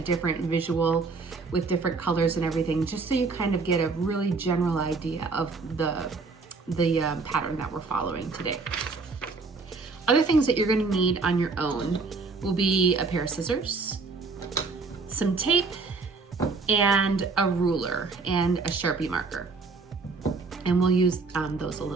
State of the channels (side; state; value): left; quieter; 4.2 dB